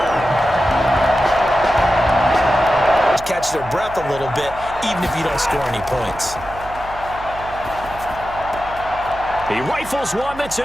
Catch their breath a little bit, even if you don't score any points. He rifles one that's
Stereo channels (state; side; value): noise; right; hum, 15 dB below the sound